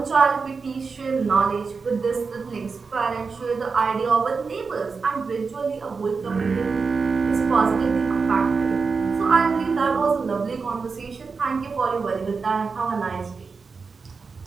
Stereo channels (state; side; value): quieter; left; 4.9 dB